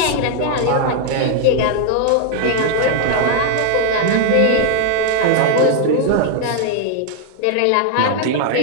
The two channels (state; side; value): different; both; correlation 0.00